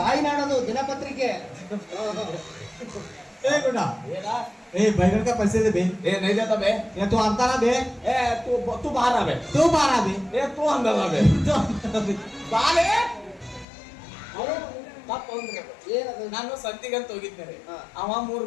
ತಾಯ್ನಾಡದು ದಿನಪತ್ರಿಕೆ. बैगन का पैसे दे बे। नहीं देता बे। ये तू अंता ना बे। तू बाहर आ बे। तू बाहर आ बे। तू अंदर आ बे। ಬಾಲೆ ನಾನು ಸಂತಿಗಂತ ಹೋಗಿದ್ದೇನೆ. ಅವ 3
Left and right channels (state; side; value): drops out; right; at 13.7 s